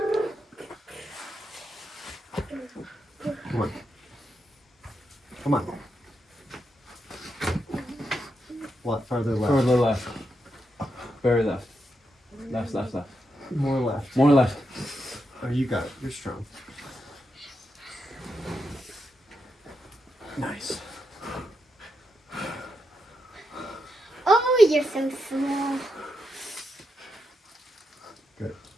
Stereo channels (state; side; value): normal; both; correlation 0.84